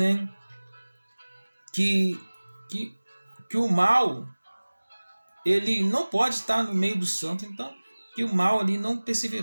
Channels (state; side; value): inverted; both; correlation -1.00